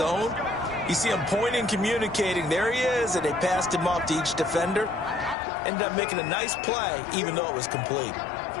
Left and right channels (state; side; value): drops out; right; at 5.4 s